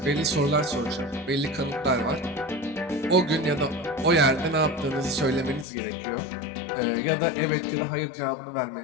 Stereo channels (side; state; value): right; drops out; at 5.7 s